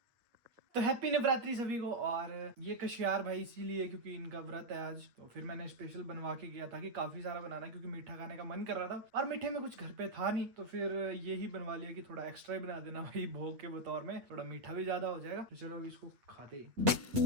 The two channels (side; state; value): left; late; 8.9 ms